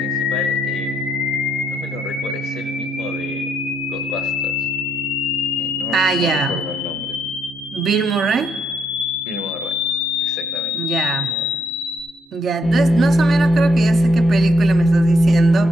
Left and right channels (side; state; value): both; normal; correlation 0.74